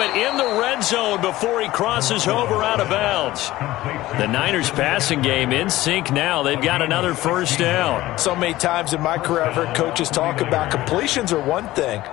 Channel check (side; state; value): right; quieter; 16.7 dB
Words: in the red zone before he crosses over out of bounds. The Niners passing game in sync now. They've got another first down. So many times in my career I've heard coaches talk about completions are one thing,